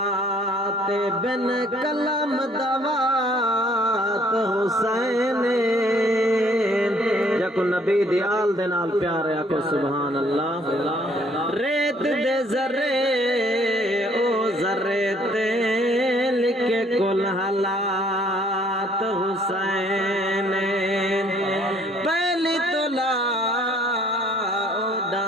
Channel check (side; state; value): both; normal; correlation 0.61